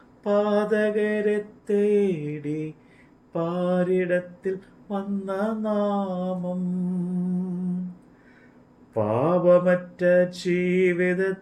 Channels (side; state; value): both; identical; correlation 1.00